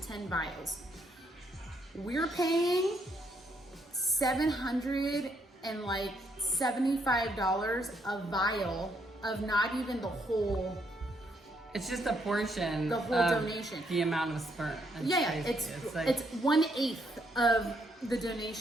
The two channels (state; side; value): normal; both; correlation 0.74